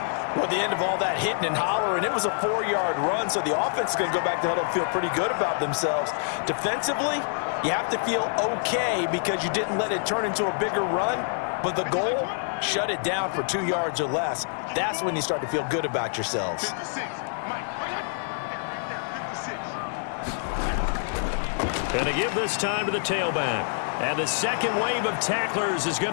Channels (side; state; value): right; silent; digital silence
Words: Well, at the end of all that hitting and hollering, it was a 4-yard run, so the offense is going to go back to huddle and feel pretty good about themselves. Defensively, you have to feel okay because you didn't let it turn into a bigger run, but the goal, shut it down for 2 yards or less. That's when you start to feel good about yourselves. And to give this time to the tailback. And the second wave of tacklers is going